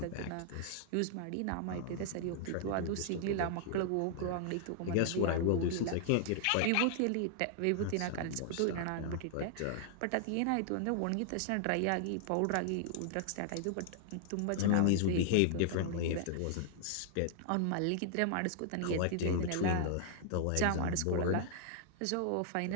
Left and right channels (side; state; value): both; different; correlation -0.01